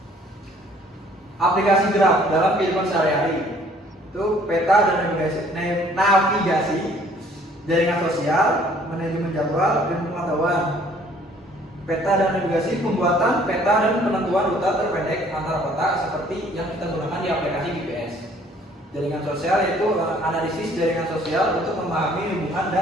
Aplikasi graf dalam kehidupan sehari-hari itu peta dan navigasi, jaringan sosial, manajemen jadwal, dan pengetahuan. Peta dan navigasi, pembuatan peta dan penentuan rute terpendek antara kota seperti yang kita gunakan di aplikasi GPS. Jaringan sosial yaitu analisis jaringan sosial untuk memahami hubungan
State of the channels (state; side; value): normal; both; correlation 0.58